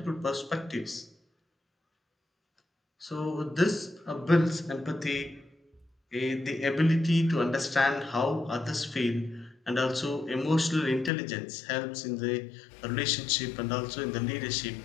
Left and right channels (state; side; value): drops out; right; at 11.1 s